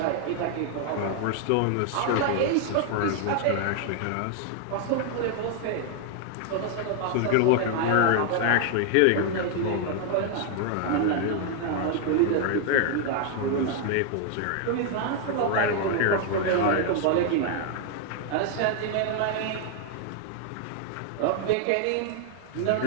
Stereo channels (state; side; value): different; both; correlation 0.00